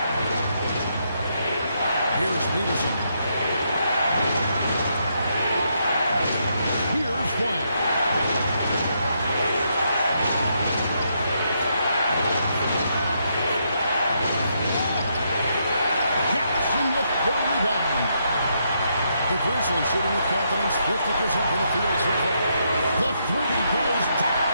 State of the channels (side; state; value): both; inverted; correlation -0.78